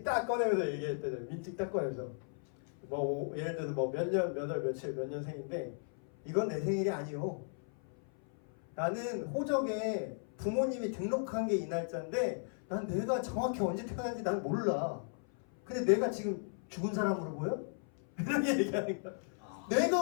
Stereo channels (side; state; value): right; silent; 54 dB below the other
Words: 딱 꺼내면서 얘기했대요. 민증 딱 꺼내면서 뭐 예를 들어서 뭐 몇 년 몇 월 며칠 몇 년생인데 이건 내 생일이 아니요. 나는 호적에 부모님이 등록한 게 이 날짜인데 난 내가 정확히 언제 태어났는지 난 몰라. 근데 내가 지금 죽은 사람으로 보여? 이렇게 얘기하는 거야.